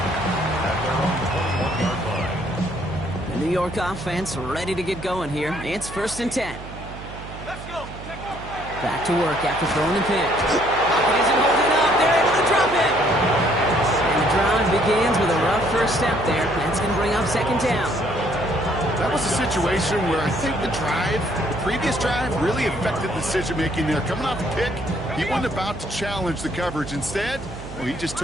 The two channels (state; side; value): noise; right; hum, 13 dB below the sound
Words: The New York offense ready to get going here. It's 1st and 10. Back to work after throwing the pick. Pocket isn't holding up. They're able to drop it. And the drive begins with a rough first step there. That's going to bring up 2nd down. That was a situation where I think the previous drive, really affected the decision-making there. Coming off a pick, he wasn't about to challenge the coverage. Instead, well, he just